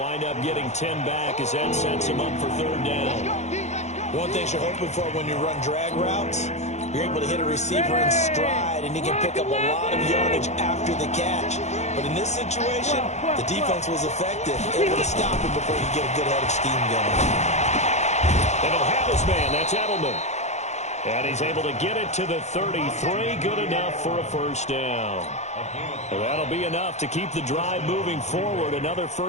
up getting 10 back as that sets him up for 3rd down. One thing you're hoping for when you run drag routes, you're able to hit a receiver in stride, and you can pick up a lot of yardage after the catch. But in this situation, the defense was effective, able to stop him before he get a good head of steam going. And he'll have his man. That's Edelman. And he's able to get it to the 33. Good enough for a first down. And that'll be enough to keep the drive moving forward. Another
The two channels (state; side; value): late; right; 0.33 ms